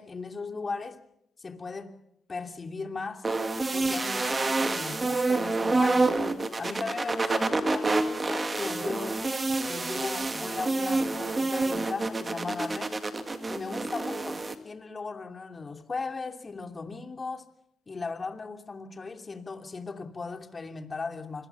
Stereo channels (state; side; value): normal; both; correlation 0.93